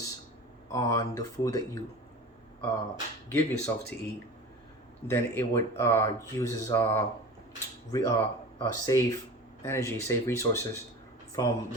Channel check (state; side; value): normal; both; correlation 0.35